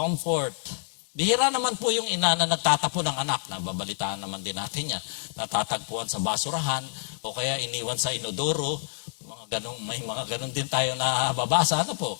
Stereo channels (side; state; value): right; silent; digital silence